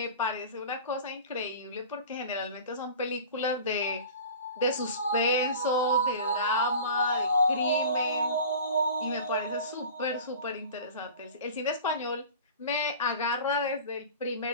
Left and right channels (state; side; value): inverted; both; correlation -0.39